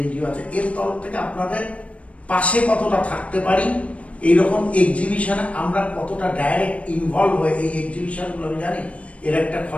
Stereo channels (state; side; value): late; right; 0.064 ms